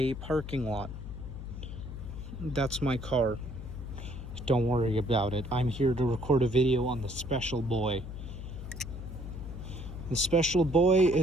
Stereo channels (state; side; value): noise; left; hum, 9 dB below the sound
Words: parking lot. That's my car. Don't worry about it. I'm here to record a video on the special boy. The special boy